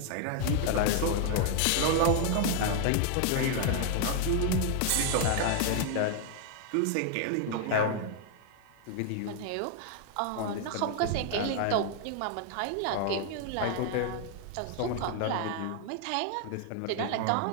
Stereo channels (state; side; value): different; both; correlation 0.00